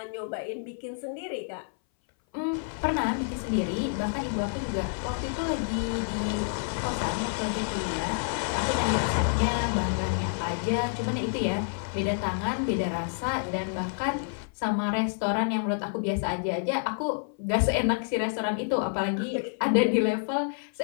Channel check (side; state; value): right; silent; 59 dB below the other